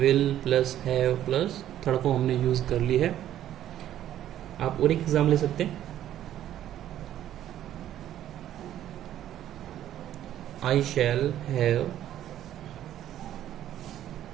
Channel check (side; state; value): left; quieter; 11.9 dB